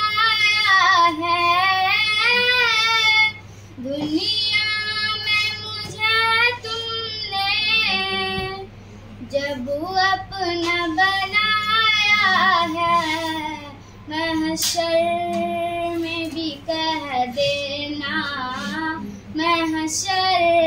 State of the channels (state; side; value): identical; both; correlation 1.00